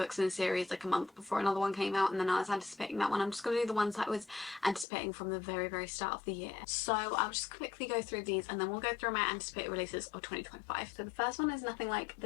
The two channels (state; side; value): drops out; right; at 4.9 s